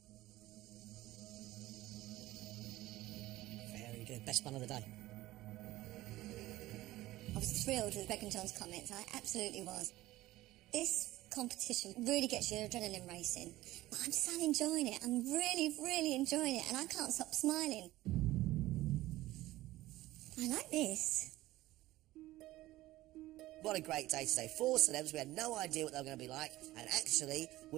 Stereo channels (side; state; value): left; quieter; 16.8 dB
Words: Very good. Best one of the day. I was thrilled with Greg and John's comments. I absolutely was. This competition really gets your adrenaline racing. But I'm so enjoying it. I'm really, really enjoying it, and I can't stop smiling. I like this. What a great day today. 4 celebs. We had no idea what they were going to be like, and actually,